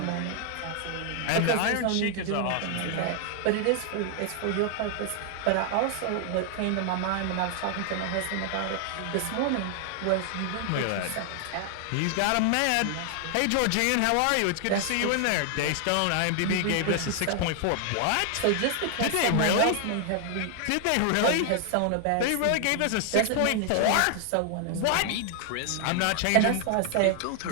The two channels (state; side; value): different; both; correlation 0.00